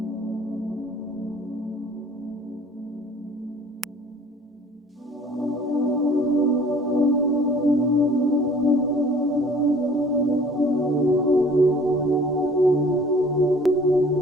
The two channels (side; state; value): both; normal; correlation 0.51